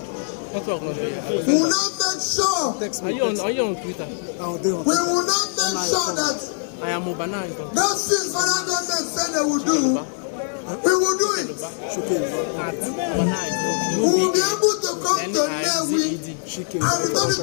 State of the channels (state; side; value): silent; right; digital silence